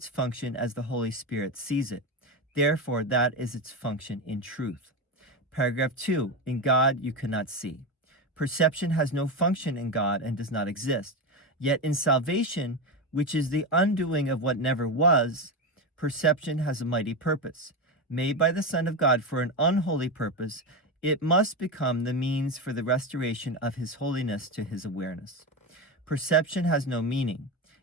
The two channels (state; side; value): normal; both; correlation 0.15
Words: function as the Holy Spirit sees it. Therefore, that is its function in truth. Paragraph 2, in God you cannot see. Perception has no function in God and does not exist. Yet in salvation, which is the undoing of what never was, perception has a mighty purpose. Made by the Son of God for an unholy purpose, it must become the means for the restoration of his holiness to his awareness. Perception has no meaning,